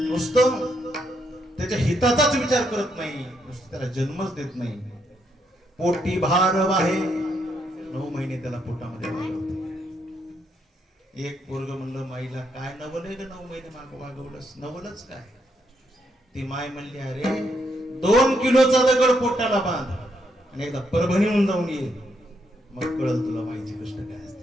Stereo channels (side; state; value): both; normal; correlation 0.77